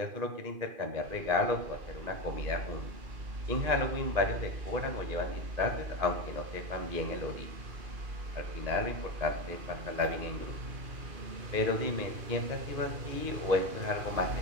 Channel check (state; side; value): late; left; 2.5 ms